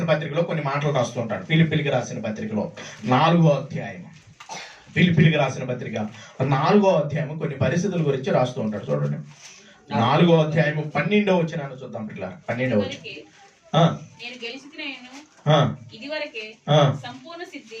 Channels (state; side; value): identical; both; correlation 1.00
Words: పత్రికలో కొన్ని మాటలు రాస్తుంటాడు. ఫిలిప్పీలకు రాసిన పత్రికలో 4వ అధ్యాయం, ఫిలిప్పీలకు రాసిన పత్రిక 4వ అధ్యాయం కొన్ని పరిస్థితుల గురించి రాస్తూ ఉంటాడు. చూడండి, 4వ అధ్యాయం 12వ వచనాన్ని చూద్దాం పిల్ల. 12వ వచనం, ఇది వరకే సంపూర్ణ సిద్ధి